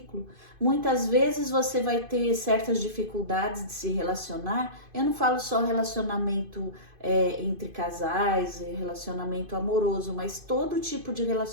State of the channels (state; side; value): late; left; 2.5 ms